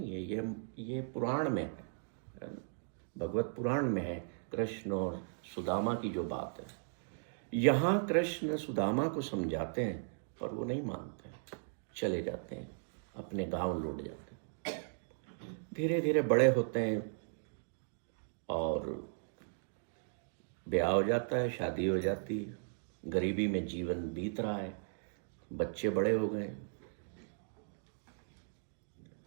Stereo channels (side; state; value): left; silent; digital silence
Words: है, ये पुराण में है ना? भगवत पुराण में है कृष्ण और सुदामा की जो बात है। यहाँ कृष्ण सुदामा को समझाते हैं, पर वो नहीं मानते, चले जाते हैं, अपने गांव लौट जाते हैं। धीरे धीरे बड़े होते हैं और ब्याह हो जाता है, शादी हो जाती है, गरीबी में जीवन बीत रहा है, बच्चे बड़े हो गए।